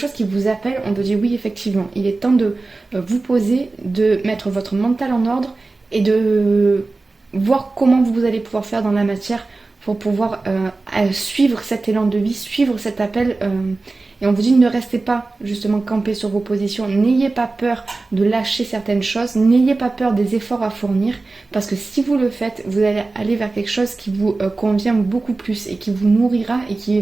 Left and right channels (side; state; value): left; quieter; 3.5 dB